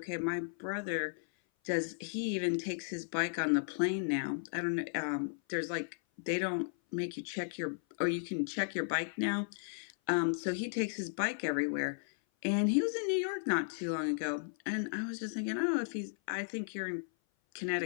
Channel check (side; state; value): right; silent; 54 dB below the other